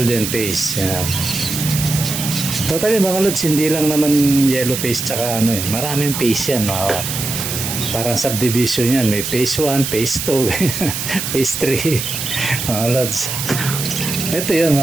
face. Yan. Totally mga lods, hindi lang naman yellow face tsaka maraming face yan parang subdivision yan, may phase 1, phase 2 phase 3 mga lods ito yun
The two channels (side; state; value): right; noise; hiss, 4 dB below the sound